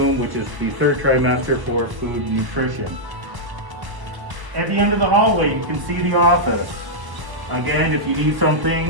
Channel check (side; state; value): left; late; 1.0 ms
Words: which is the 3rd trimester for food and nutrition. At the end of the hallway, you can see the office. Again, if you need